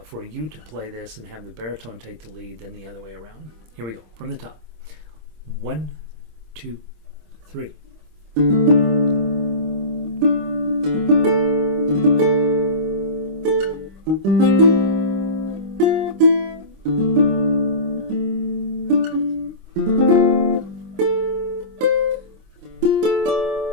for you to play this and have the baritone take the lead than the other way around. Here we go, from the top. 1, 2, 3.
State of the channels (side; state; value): left; late; 26 ms